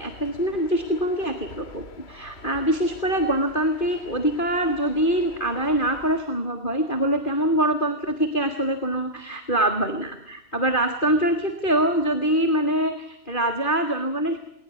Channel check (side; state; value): right; late; 2.4 ms